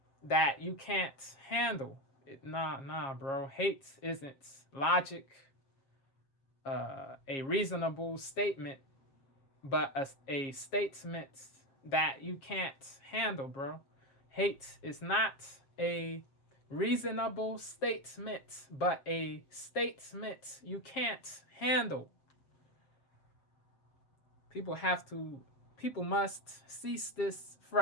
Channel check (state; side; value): late; right; 7.3 ms